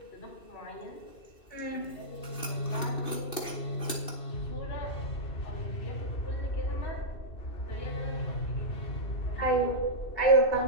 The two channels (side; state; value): right; late; 2.6 ms